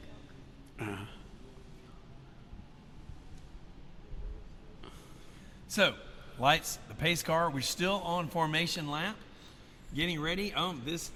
Coke. So, lights, the pace car. We're still on formation lap. Getting ready. Hey,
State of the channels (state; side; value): identical; both; correlation 1.00